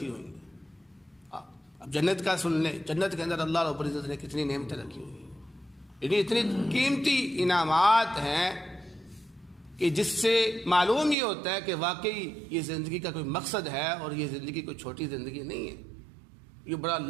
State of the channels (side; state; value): left; drops out; at 11.2 s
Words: ہوئی ہیں۔ اب جنت کا سن لیں، جنت کے اندر اللہ رب العزت نے کتنی نعمتیں رکھی ہوئی ہیں، یعنی اتنی قیمتی انعامات ہیں کہ جس سے معلوم یہ ہوتا ہے کہ واقعی یہ زندگی کا کوئی مقصد ہے اور یہ زندگی کوئی چھوٹی زندگی نہیں ہے، یہ بڑا